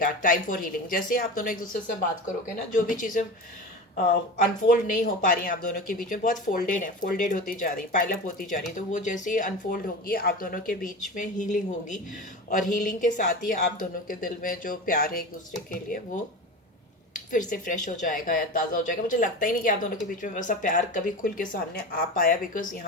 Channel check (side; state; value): both; normal; correlation 0.29